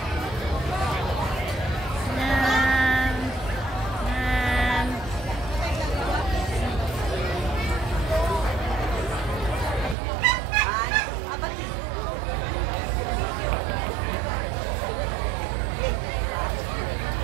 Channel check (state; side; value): drops out; left; at 10.0 s